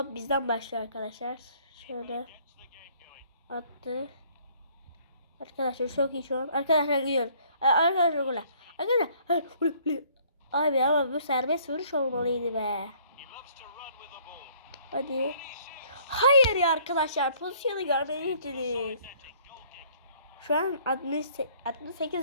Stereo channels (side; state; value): both; inverted; correlation -0.60